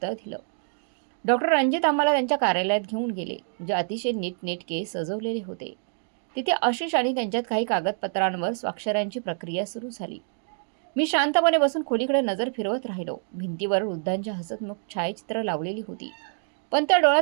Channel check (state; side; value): silent; left; digital silence